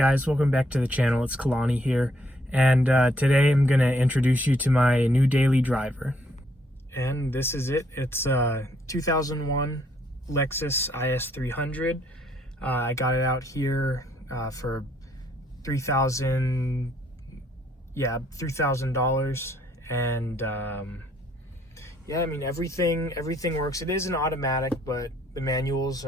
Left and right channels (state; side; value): normal; both; correlation 0.69